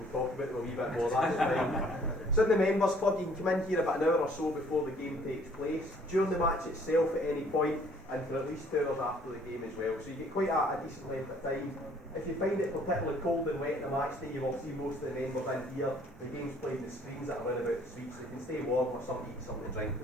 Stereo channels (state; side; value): normal; both; correlation 0.59